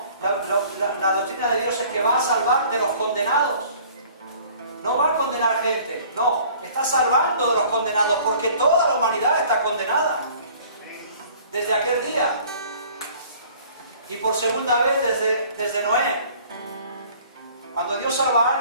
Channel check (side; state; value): both; inverted; correlation -0.52